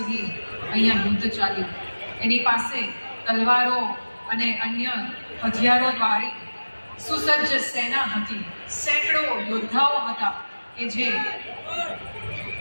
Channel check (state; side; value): inverted; both; correlation -1.00